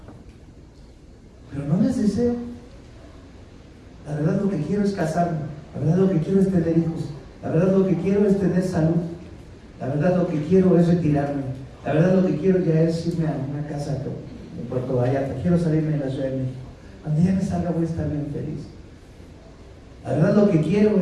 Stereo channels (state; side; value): identical; both; correlation 1.00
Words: Pero no las deseo. La verdad lo que quiero es casarme. La verdad lo que quiero es tener hijos. La verdad lo que quiero es tener salud. La verdad lo que quiero es retirarme. La verdad lo que quiero ya es irme a una casa en Puerto Vallarta. Quiero salirme de la Ciudad de México. Cuando ya me salga voy a estar bien feliz. La verdad lo que quiero